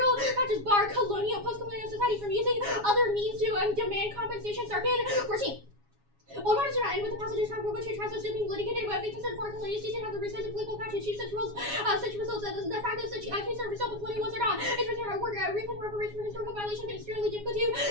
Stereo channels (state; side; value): late; left; 7.2 ms